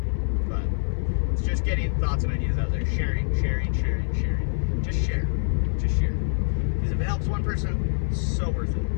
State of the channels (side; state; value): right; silent; 60 dB below the other